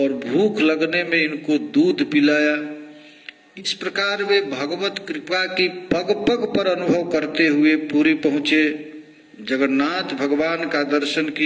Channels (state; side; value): identical; both; correlation 1.00